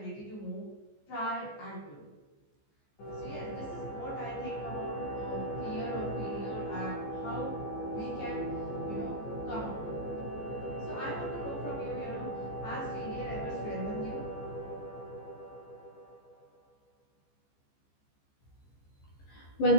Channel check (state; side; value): late; right; 14 ms